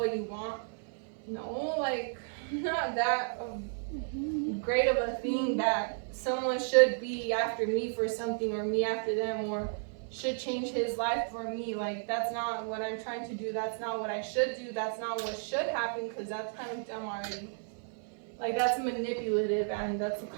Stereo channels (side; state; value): left; silent; 56 dB below the other